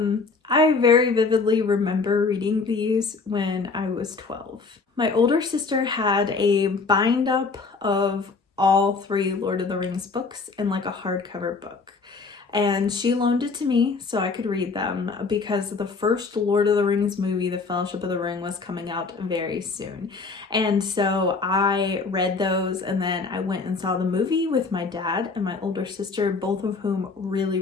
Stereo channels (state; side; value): quieter; right; 4.4 dB